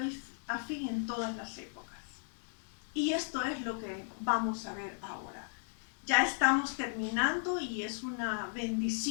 a fin en todas las épocas. Y esto es lo que vamos a ver ahora. Ya estamos terminando y es una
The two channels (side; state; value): right; silent; 54 dB below the other